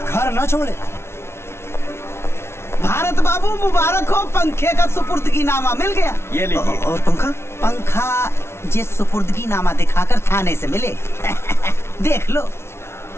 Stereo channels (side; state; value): right; late; 0.12 ms